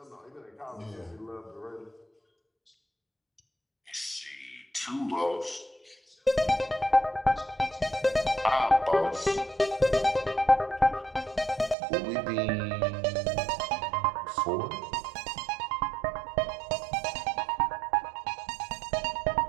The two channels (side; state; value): left; drops out; at 11.8 s